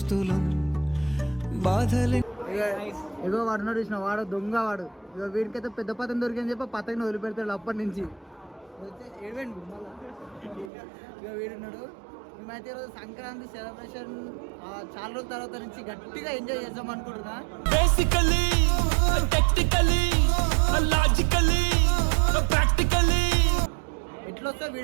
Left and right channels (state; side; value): drops out; left; at 10.7 s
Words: బాధలే. ఇగో వాడు చూసిన వాడు దొంగ వాడు. ఇక వీడికైతే పెద్ద పతంగి దొరికిందని చెప్పి పతంగిని వదిలిపెడతాడు అప్పటి నుంచి. ఇక వీడున్నాడు. మేమైతే ఈరోజు సంక్రాంతి సెలబ్రేషన్ చాలా రోజుల తర్వాత నుంచి గట్టిగా ఎంజాయ్ చేద్దాం అనుకుంటున్నా. బేసికల్లీ టెక్నికల్లీ లాజికల్లీ ప్రాక్టికల్లీ ఎట్లా వస్తే